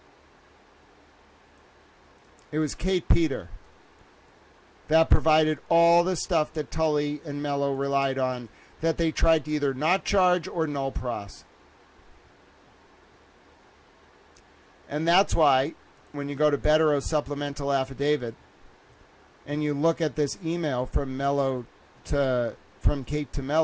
It was Kate Peter that provided all the stuff that Tully and Mello relied on, that they tried to either not charge or null pros. And that's why, when you go to Bettero's supplemental affidavit, and you look at this email from Kate to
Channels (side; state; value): both; identical; correlation 1.00